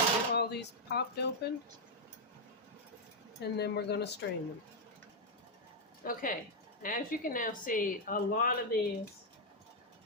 all these popped open, and then we're going to strain them. Okay, as you can now see, a lot of these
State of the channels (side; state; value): both; normal; correlation -0.01